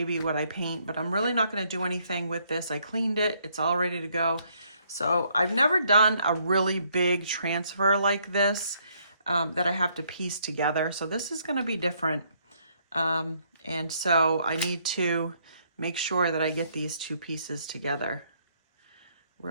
be what I paint, but I'm really not going to do anything with this. I cleaned it. It's all ready to go. So I've never done a really big transfer like this that I have to piece together. So this is going to be different. And so I need to make sure that I get these two pieces together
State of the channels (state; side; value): inverted; both; correlation -0.70